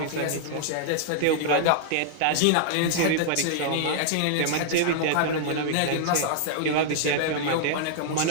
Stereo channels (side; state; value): both; different; correlation -0.01